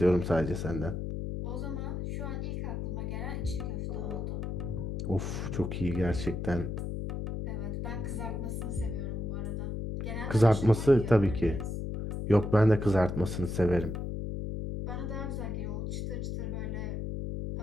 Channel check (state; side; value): noise; left; hum, 3 dB below the sound